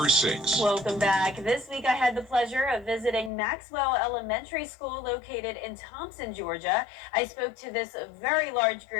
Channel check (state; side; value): drops out; right; at 3.3 s